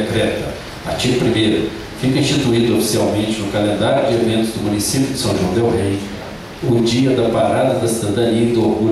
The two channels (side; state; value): both; identical; correlation 1.00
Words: artigo 1º, fica instituído oficialmente no calendário de eventos do município de São João del Rei o Dia da Parada da Cidadania e do